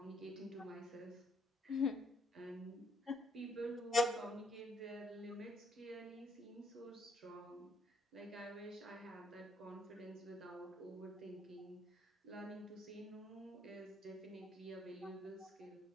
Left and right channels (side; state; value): both; normal; correlation 0.71